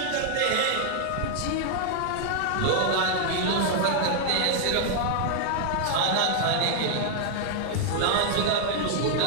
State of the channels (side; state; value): both; different; correlation -0.01